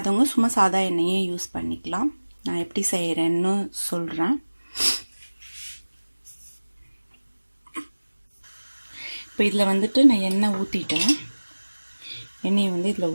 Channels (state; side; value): inverted; both; correlation -1.00